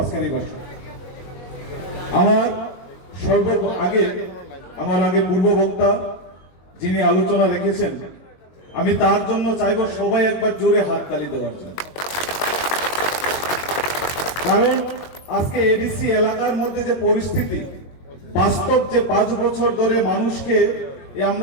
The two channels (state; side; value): late; right; 22 ms